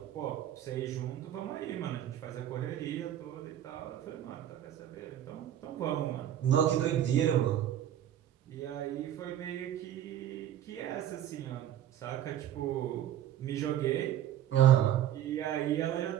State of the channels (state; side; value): quieter; left; 11.3 dB